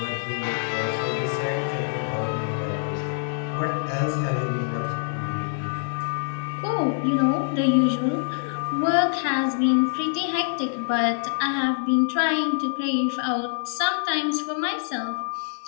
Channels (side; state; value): right; silent; 61 dB below the other